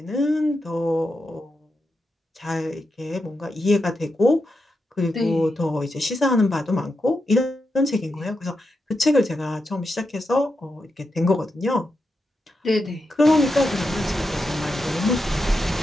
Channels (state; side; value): normal; both; correlation 0.86